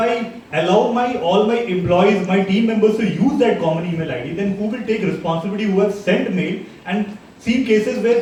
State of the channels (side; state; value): both; identical; correlation 1.00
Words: allow all my employees, my team members to use that common email ID, then who will take responsibility? Who have sent mail? And seen cases where